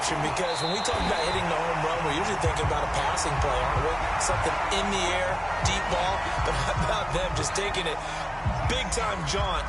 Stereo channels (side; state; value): both; identical; correlation 1.00